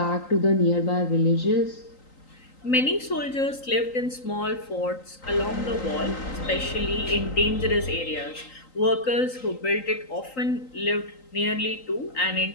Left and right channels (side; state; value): right; late; 3.9 ms